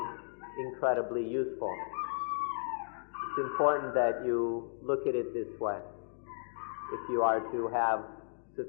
incredibly useful. It's important that you look at it this way if you are to have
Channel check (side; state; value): right; silent; digital silence